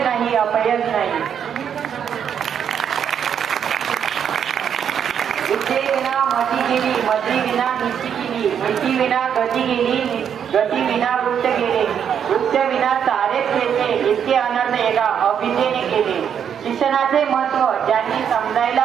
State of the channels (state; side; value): quieter; left; 8.2 dB